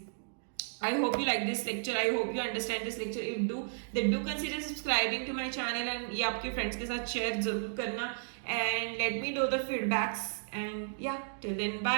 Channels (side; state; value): left; silent; digital silence